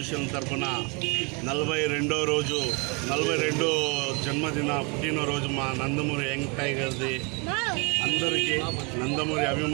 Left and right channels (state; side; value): quieter; left; 30.3 dB